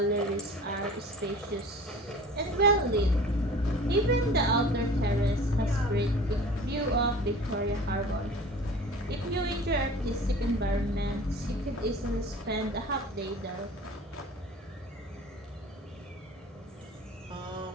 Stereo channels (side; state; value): both; normal; correlation 0.43